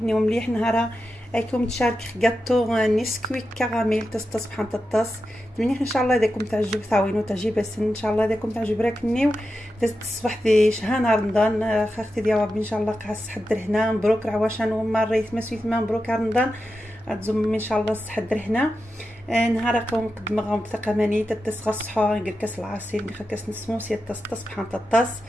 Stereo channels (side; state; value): both; normal; correlation 0.90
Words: نيو مليح نهارا رايكم تشارك غاتو نسكويك كراميل تصطس بحال تطاس مليح ان شاء الله داكم تعجب ثاوينو تعجب بس ان شاء الله داكم تعجب راك نيو الصباح دي شهر نهار رمضان خاختي ديال ربي ان شاء الله قاص حضر هنا مبروك عواشان وما ريت مسويت مبروك رمضان تزم ان شاء الله صحضر هنا نهار قوم قدم غوم ثقماني تتصغى الصحور ندير كاس العصير ندير كاس نسموسيه تصطس بحال تطاس